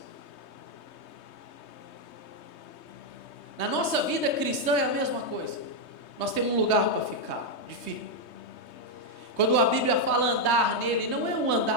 Na nossa vida cristã é a mesma coisa. Nós temos um lugar para ficar, de firme. Quando a Bíblia fala andar nele, não é um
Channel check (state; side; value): late; right; 3.2 ms